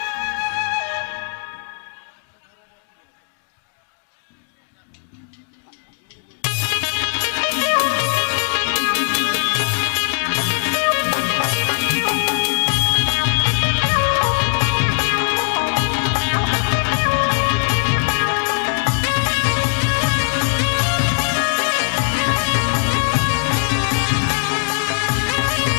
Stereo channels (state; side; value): silent; right; digital silence